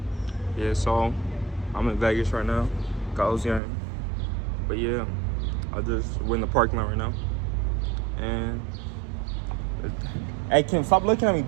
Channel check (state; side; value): drops out; left; at 3.6 s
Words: Yeah, so I'm in Vegas right now. Goblin game. But yeah, we're in the parking lot right now. And hey, Kim, stop looking at me,